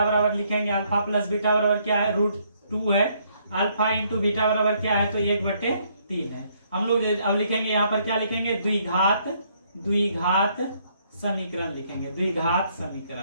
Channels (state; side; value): inverted; both; correlation -0.69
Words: बराबर लिखेंगे, अल्फा प्लस बीटा बराबर क्या है, √2 है, अल्फा इंटू बीटा बराबर क्या है, तो 1/3 है। हम लोग अब लिखेंगे यहाँ पर क्या लिखेंगे, द्विघात समीकरण लिखेंगे। द्विघात